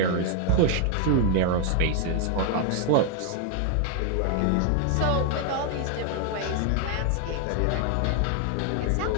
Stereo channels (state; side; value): different; both; correlation 0.00